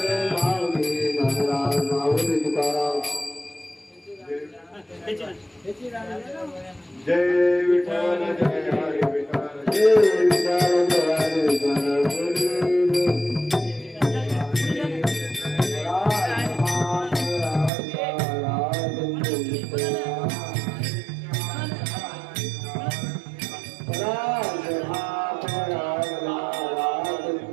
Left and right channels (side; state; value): left; drops out; at 17.7 s